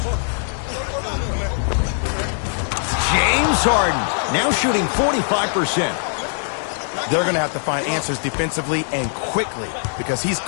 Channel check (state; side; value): silent; right; 63 dB below the other